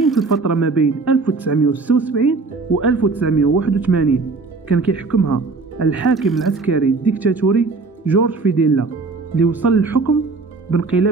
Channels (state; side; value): quieter; left; 4.0 dB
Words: في الفترة ما بين 1976 و 1981 كان كيحكمها الحاكم العسكري الديكتاتوري جورج فيديلا، اللي وصل للحكم